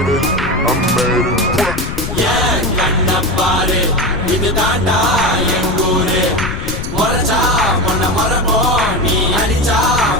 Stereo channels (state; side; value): noise; left; rumble, 6 dB below the sound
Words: it. I made it. Yeah, kanna paare idu daanda engure moracha monna marabo nee adicha